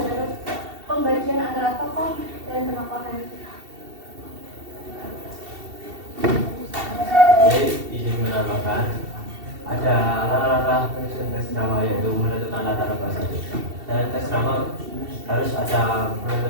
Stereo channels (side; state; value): left; late; 2.7 ms